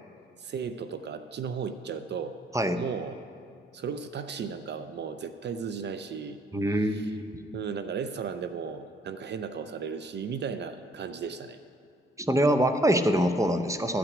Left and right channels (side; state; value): both; normal; correlation 0.63